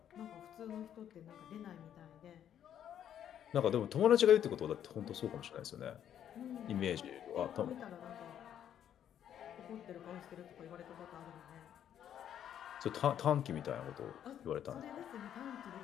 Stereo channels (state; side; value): quieter; right; 9.9 dB